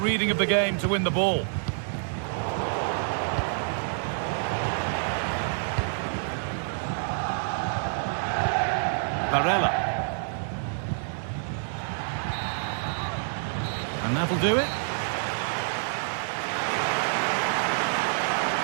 of the game to win the ball. Barella. And that'll do it.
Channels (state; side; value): silent; left; 60 dB below the other